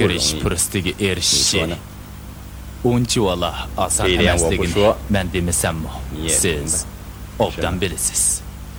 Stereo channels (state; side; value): identical; both; correlation 1.00